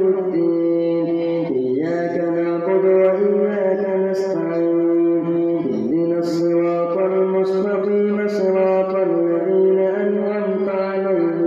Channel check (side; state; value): both; identical; correlation 1.00